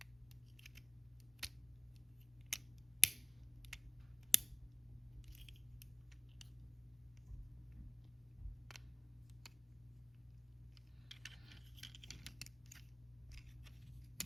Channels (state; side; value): normal; both; correlation 0.90